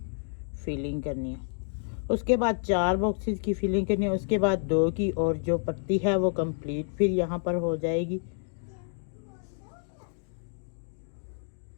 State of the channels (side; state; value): right; silent; 58 dB below the other